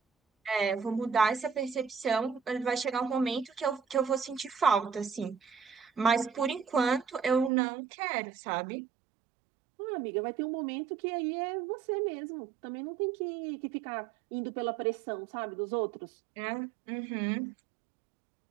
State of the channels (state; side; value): drops out; left; at 7.5 s